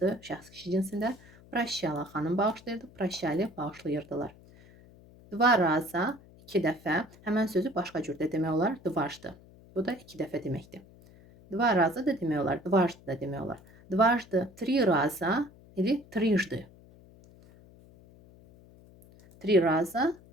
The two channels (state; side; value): noise; left; hum, 24 dB below the sound